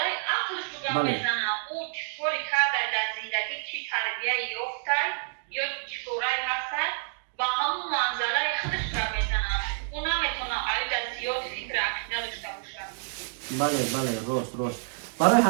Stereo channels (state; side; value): silent; left; digital silence